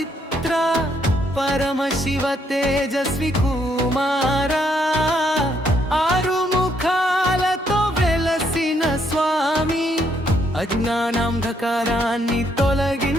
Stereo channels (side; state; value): both; normal; correlation 0.72